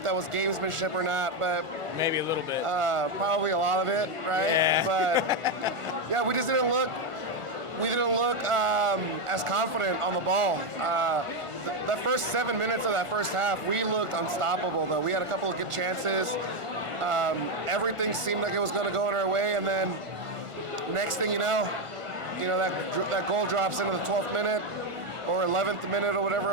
that was gamesmanship or not, but maybe a little bit. probably a lot of it, right? Yeah. But yeah, we just didn't look. We didn't look as confident on the ball. The first 7 minutes of that first half, we looked unstoppable. Though we had a couple of good chances. Everything seemed like it was going to go in our way, and then next thing you know, that goal drops into the 12th minute or 11th minute or whatever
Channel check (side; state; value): left; late; 1.5 ms